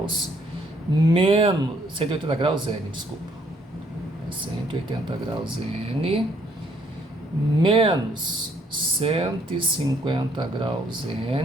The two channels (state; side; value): normal; both; correlation 0.67